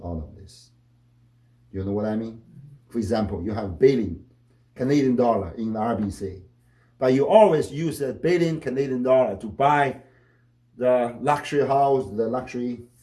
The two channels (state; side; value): identical; both; correlation 1.00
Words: all of this. You know what I mean? For example, you have $1 billion Canadian dollar in the RBC, but you always use $1 billion Canadian dollar to buy the luxury house, the luxury,